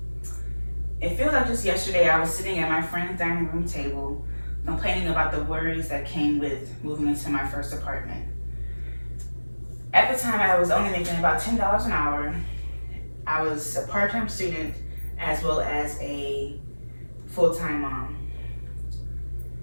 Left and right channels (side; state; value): both; inverted; correlation -1.00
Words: It feels like just yesterday I was sitting at my friend's dining room table complaining about the worries that came with moving into my first apartment. At the time, I was only making about $10 an hour. I was a part-time student as well as a full-time mom.